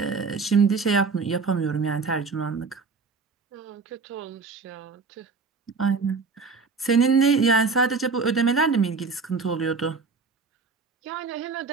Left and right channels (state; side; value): quieter; left; 4.6 dB